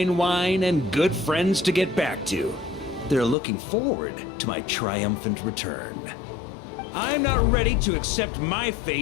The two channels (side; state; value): right; drops out; at 3.4 s